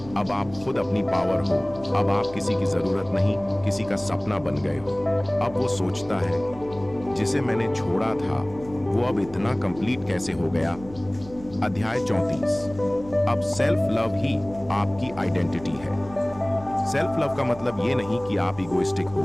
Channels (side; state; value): right; noise; hum, 18 dB below the sound